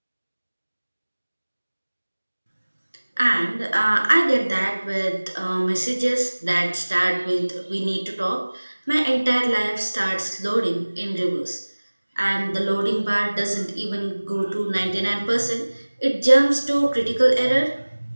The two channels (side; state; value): both; inverted; correlation -1.00